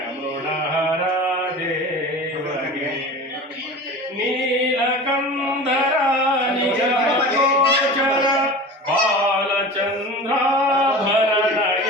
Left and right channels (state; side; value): normal; both; correlation 0.35